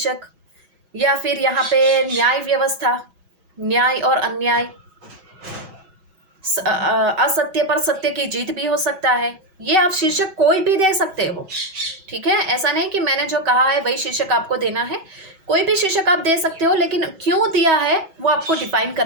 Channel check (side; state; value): left; late; 6.2 ms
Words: या फिर यहाँ पे न्याय व्यवस्था, न्याय और अन्याय, असत्य पर सत्य की जीत भी हो सकता है। ये आप शीर्षक कोई भी दे सकते हो, ठीक है। ऐसा नहीं कि मैंने जो कहा है वही शीर्षक आपको देना है, कोई भी शीर्षक आप दे सकते हो, लेकिन क्यों दिया है वो आपको डिफाइन